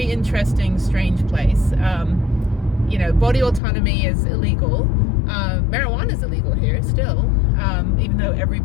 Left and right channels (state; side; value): drops out; right; at 3.6 s